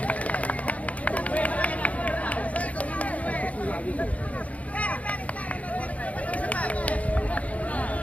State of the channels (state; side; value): late; right; 0.068 ms